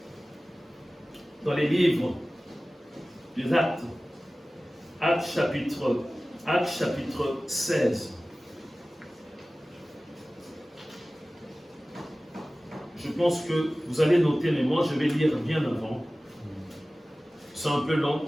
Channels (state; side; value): normal; both; correlation 0.97